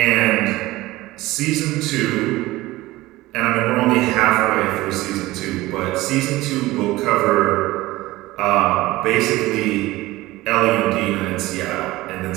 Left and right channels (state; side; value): quieter; left; 18.5 dB